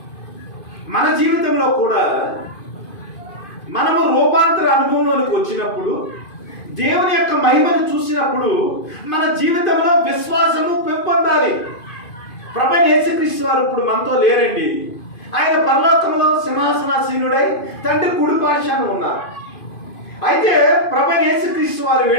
మన జీవితంలో కూడా మనము రూపాంతర అనుభవంలోనికి వచ్చినప్పుడు, దేవుని యొక్క మహిమను చూసినప్పుడు మన జీవితంలో విశ్వాసము పెంపొందాలి. ప్రభువైన యేసుక్రీస్తు వారు ఇప్పుడు మనతో లేరండి. ఆయన పరలోకంలో సింహాసనాసీనుడై తండ్రి కుడిపార్శ్వాన ఉన్నారు. అయితే ప్రభువైన యేసుక్రీస్తు వారు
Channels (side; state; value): right; late; 2.5 ms